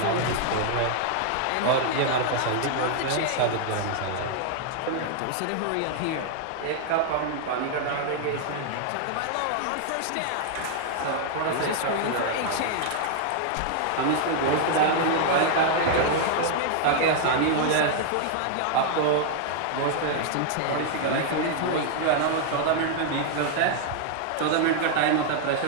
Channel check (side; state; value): both; different; correlation 0.00